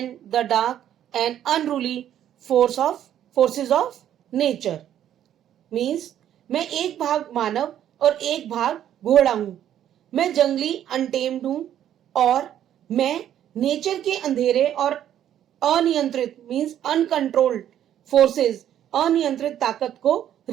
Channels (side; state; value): left; quieter; 10.8 dB